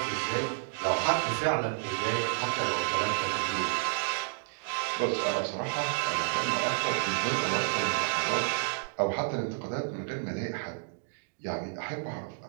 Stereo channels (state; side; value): silent; left; digital silence